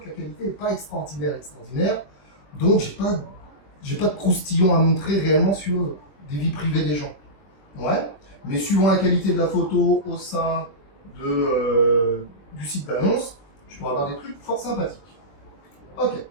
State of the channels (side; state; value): right; late; 21 ms